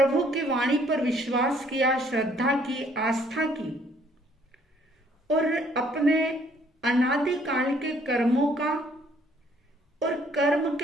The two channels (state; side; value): normal; both; correlation 0.63